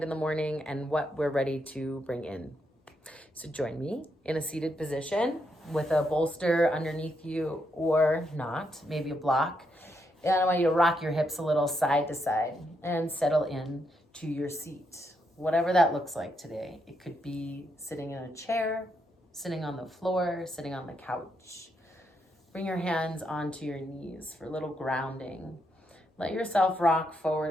in the morning, and what we're ready to bring in. So join me in a seated position with a bolster underneath you or not, maybe a block. And I want you to rock your hips a little side to side and settle in to your seat, whatever that looks like today. It could be sitting in a chair, sitting on the floor, sitting on the couch. Bring your hands onto your knees for a little grounding. Let yourself rock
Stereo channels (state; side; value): normal; both; correlation 0.79